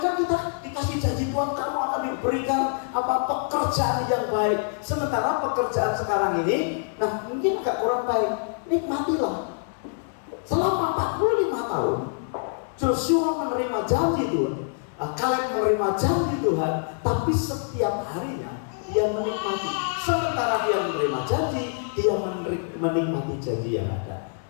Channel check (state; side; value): silent; right; digital silence